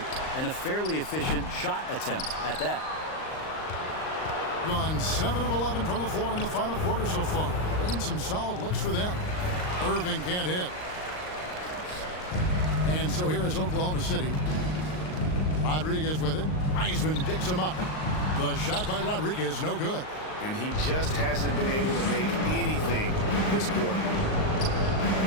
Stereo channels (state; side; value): late; right; 39 ms